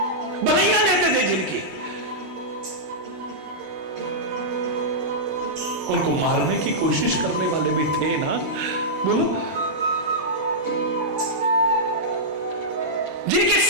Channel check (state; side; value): normal; both; correlation -0.10